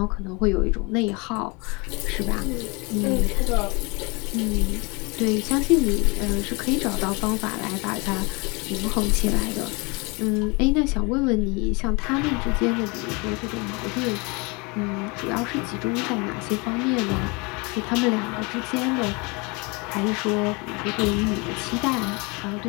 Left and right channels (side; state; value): right; quieter; 28.6 dB